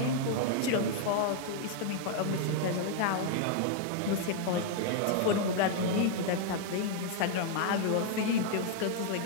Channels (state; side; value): different; both; correlation 0.00